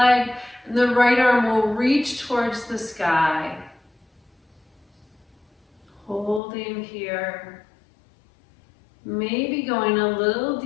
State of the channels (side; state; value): right; drops out; at 6.4 s